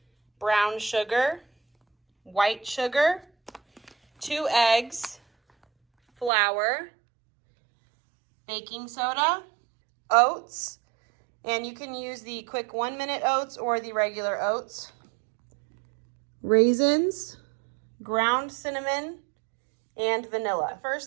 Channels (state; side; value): drops out; left; at 6.3 s